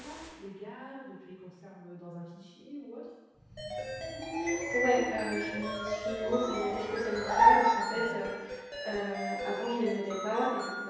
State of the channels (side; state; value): both; identical; correlation 1.00